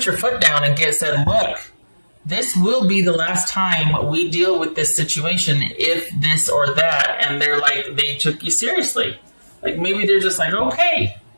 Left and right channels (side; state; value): both; inverted; correlation -1.00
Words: your foot down and said, look, this will be the last time we deal with this situation if this or that. And they're like, they took you seriously. Like maybe they're just like, okay,